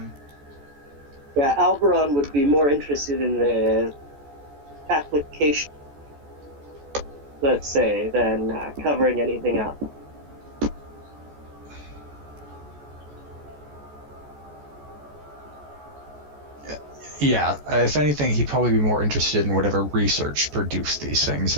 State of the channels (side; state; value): left; late; 14 ms